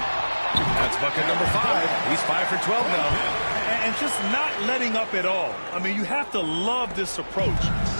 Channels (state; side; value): inverted; both; correlation -1.00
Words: That's bucket number 5. He's 5 for 12 now. And just not letting up at all. I mean, you have to love this approach.